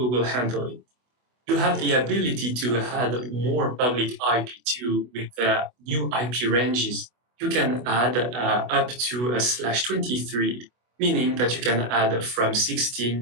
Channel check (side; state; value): left; late; 24 ms